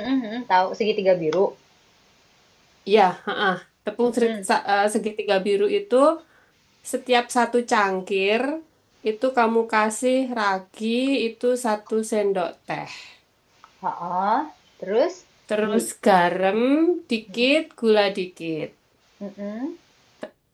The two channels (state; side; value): identical; both; correlation 1.00